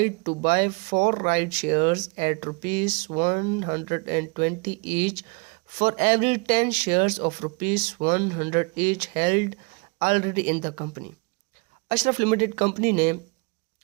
to buy 4 right shares at rupees 120 each for every 10 shares of rupees 100 each held already in the company। Ashraf limited company ने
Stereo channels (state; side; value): quieter; left; 31.0 dB